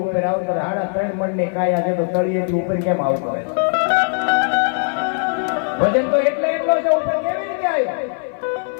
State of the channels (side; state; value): right; silent; 66 dB below the other